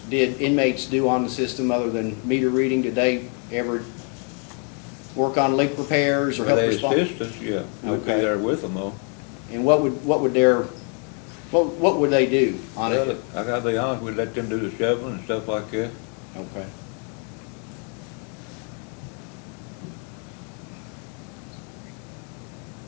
did inmates do on the system other than meter reading? Did they ever work on leak repairs or Well, help they respond? assist us, yeah. We'd be Okay. there with them, though. And what would they do on Well, it? I gotta be honest, we'd let them do the shoveling and stuff like that. Okay.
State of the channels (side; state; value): right; quieter; 39.2 dB